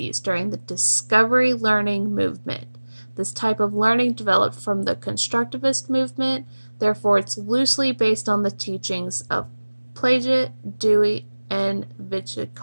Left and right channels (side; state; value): both; inverted; correlation -1.00